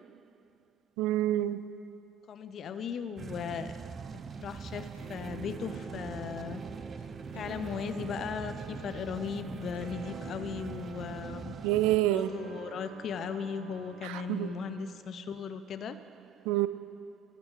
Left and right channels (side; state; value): left; quieter; 3.6 dB